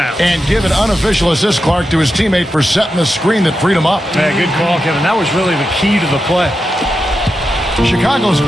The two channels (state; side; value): normal; both; correlation 0.89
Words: And give an unofficial assist, Clark, to his teammate for setting the screen that freed him up. Yeah, good call, Kevin. That was really the key to the play. Chicago's